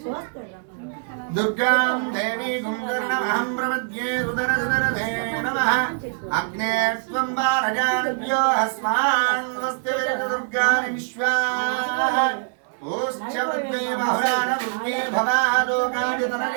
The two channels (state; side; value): silent; left; 63 dB below the other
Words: దుర్గాం దేవీగుం కర్ణమహం ప్రపద్యే సుదరసుదరదే నమః అగ్నే త్వం వారజానభ్యో అస్మాన్ స్వస్తి దుర్గాని విశ్వాః ఓశ్చ వృద్ధ్వే బహుళాన వృద్ధ్వే భవాలోకాని